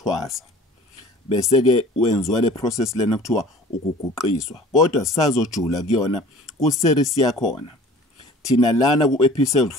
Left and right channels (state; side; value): normal; both; correlation 0.46